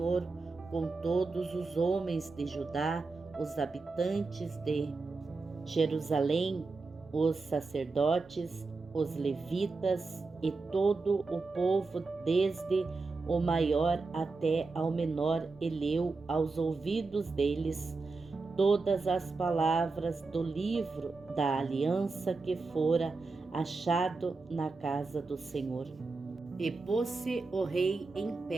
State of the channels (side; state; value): left; quieter; 3.9 dB